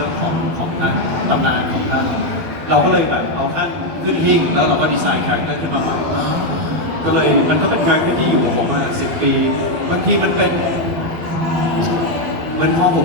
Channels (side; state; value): left; late; 12 ms